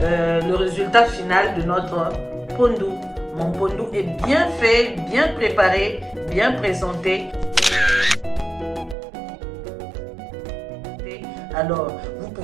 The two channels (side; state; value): left; drops out; at 9.0 s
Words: le résultat final de notre pondu. Mon pondou est bien fait, bien préparé, bien présenté. Alors, vous